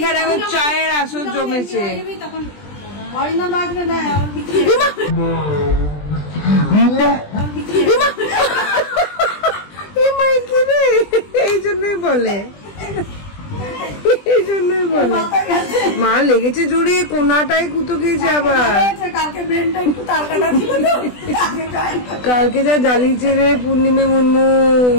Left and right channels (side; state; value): right; late; 20 ms